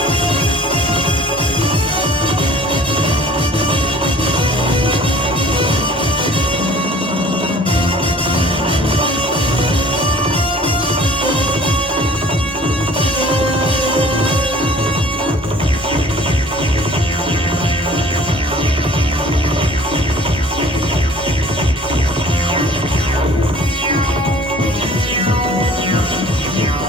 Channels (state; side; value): normal; both; correlation 0.50